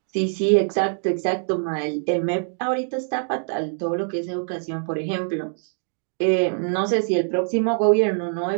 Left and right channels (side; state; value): left; silent; digital silence